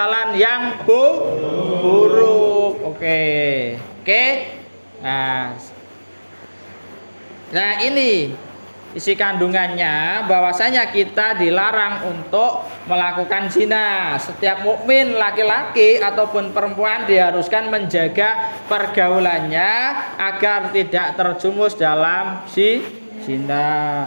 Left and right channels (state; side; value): inverted; both; correlation -1.00